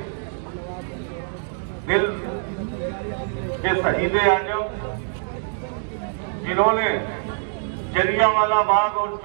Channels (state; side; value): silent; left; digital silence